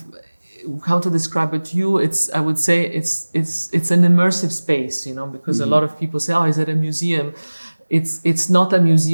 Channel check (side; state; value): both; inverted; correlation -1.00